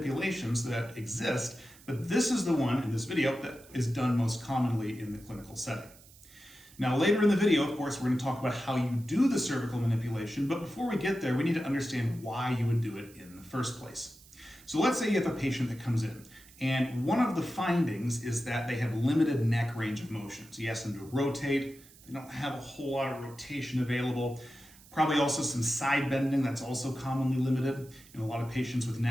that exist, but this is the one in this video that is done most commonly in the clinical setting. Now, later in the video, of course, we're going to talk about how you do the cervical manipulation, but before we get there, we need to understand why you would do it in the first place. So let's say you have a patient that comes in, and one of the findings is that they have limited neck range of motion. So you ask them to rotate, they don't have a whole lot of rotation available. Probably also some side bending that's also commonly limited in a lot of patients with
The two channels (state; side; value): noise; right; hiss, 23 dB below the sound